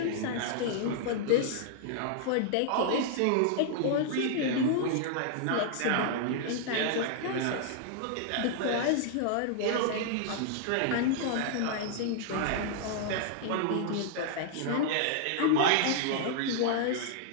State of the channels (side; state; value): both; different; correlation 0.00